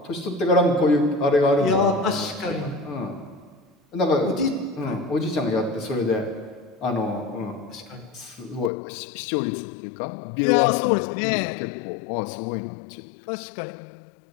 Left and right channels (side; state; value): right; drops out; at 8.7 s